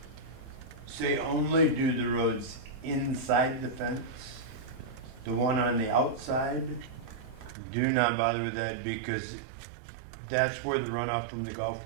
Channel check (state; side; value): drops out; left; at 7.6 s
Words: say only do the roads inside the fence. The one on the outside, do not bother with that because that's where the runoff from the golf